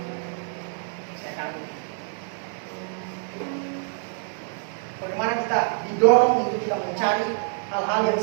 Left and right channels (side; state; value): left; silent; 61 dB below the other